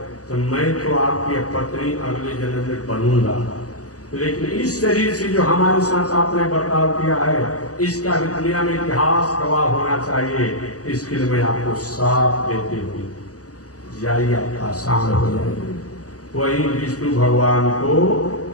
तो मैं तो आपकी पत्नी अगले जन्म में बनूंगा, लेकिन इस शरीर से जो हमारे साथ आपने बर्ताव किया है, इसका भी दुनिया में इतिहास गवाह होना चाहिए। इसके लिए मैं आपको साथ देती हूँ, जाइए आपका आसान हो जाएगा। वही विष्णु भगवान को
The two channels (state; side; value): late; right; 0.67 ms